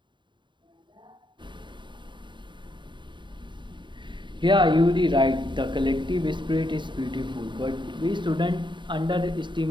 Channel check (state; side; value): late; left; 0.23 ms